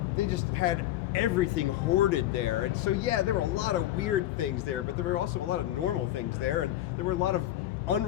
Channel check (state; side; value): quieter; right; 13.8 dB